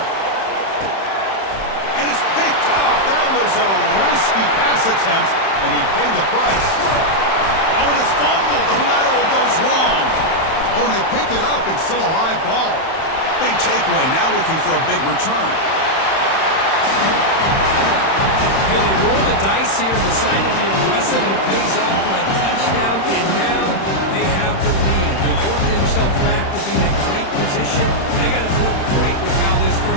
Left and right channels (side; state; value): right; late; 31 ms